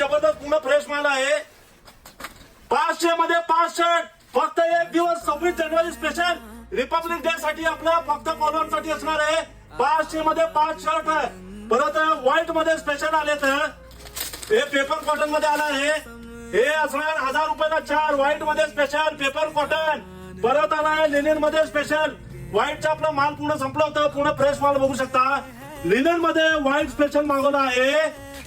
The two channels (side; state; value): both; identical; correlation 1.00